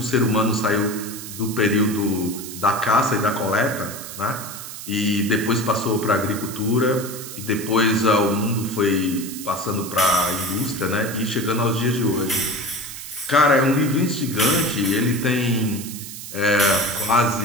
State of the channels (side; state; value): right; noise; hiss, 11 dB below the sound